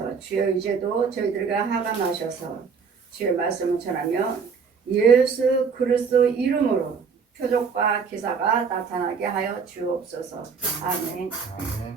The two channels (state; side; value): quieter; left; 5.7 dB